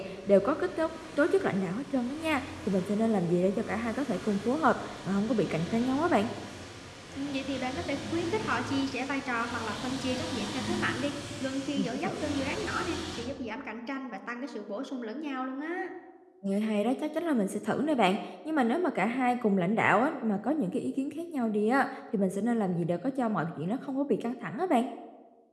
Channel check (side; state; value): both; identical; correlation 1.00